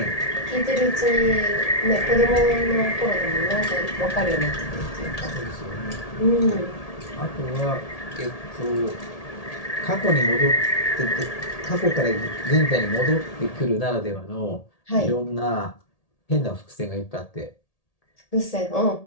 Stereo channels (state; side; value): late; right; 1.8 ms